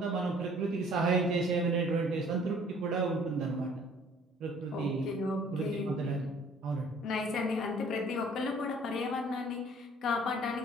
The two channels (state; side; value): normal; both; correlation 0.55